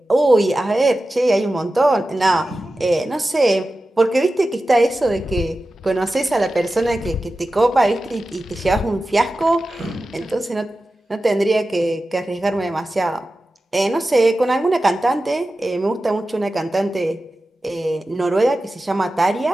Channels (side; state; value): both; normal; correlation 0.94